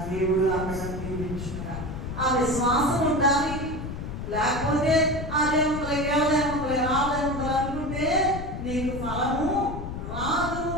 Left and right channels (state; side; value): noise; left; rumble, 7 dB below the sound